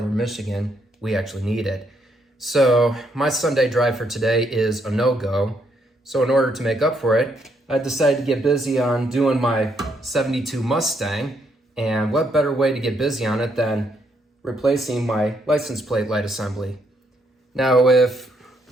Michigan, we actually need it. So my Sunday drive for today is a no-go. So in order to make up for it, I decided to get busy on doing my 72 Mustang. And what better way to get busy on it than replacing my license plate light assembly. Now, if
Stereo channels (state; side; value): normal; both; correlation 0.74